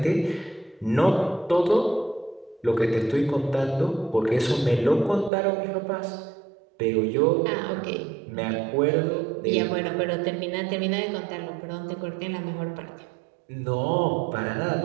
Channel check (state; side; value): drops out; left; at 5.3 s